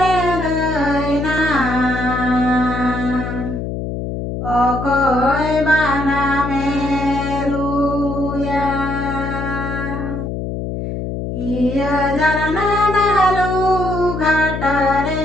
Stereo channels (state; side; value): noise; left; hum, 5 dB below the sound